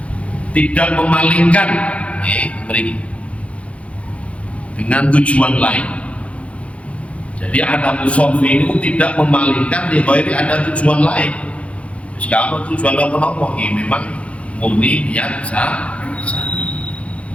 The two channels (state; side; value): late; right; 0.063 ms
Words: tidak memalingkan dengan tujuan lain. Jadi ada musafir itu tidak memalingkan di bawah ini ada tujuan lain. Kalau tujuan apa-apa ini memang murni niat sa'i.